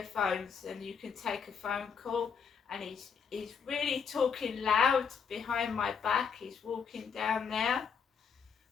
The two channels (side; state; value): right; quieter; 6.5 dB